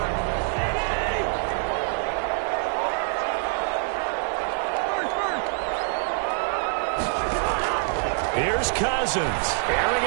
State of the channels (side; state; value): left; silent; 59 dB below the other